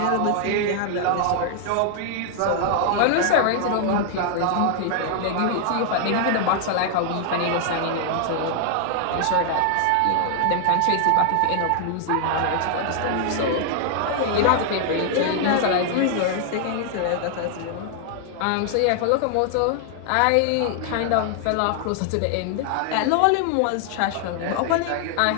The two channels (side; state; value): both; different; correlation 0.00